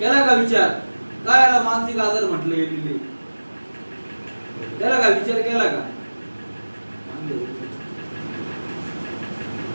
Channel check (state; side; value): inverted; both; correlation -1.00